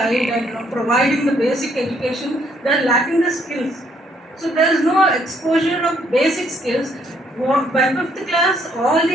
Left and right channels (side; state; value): both; normal; correlation 0.68